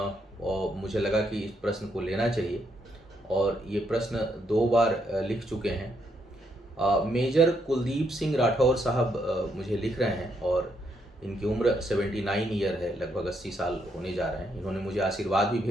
और मुझे लगा कि इस प्रश्न को लेना चाहिए, और ये प्रश्न 2 बार लिख चुके हैं। मेजर कुलदीप सिंह राठौर साहब मुझे लिख रहे हैं और इनकी उम्र 79 ईयर है, लगभग 80 साल होने जा रहे हैं। इन्होंने मुझे आशीर्वाद भी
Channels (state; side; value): normal; both; correlation 0.76